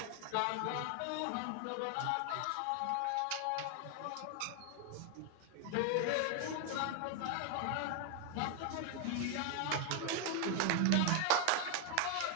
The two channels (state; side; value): different; both; correlation 0.01